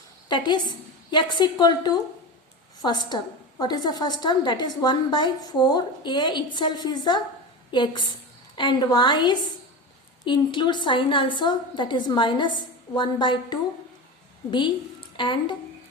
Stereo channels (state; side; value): normal; both; correlation 0.25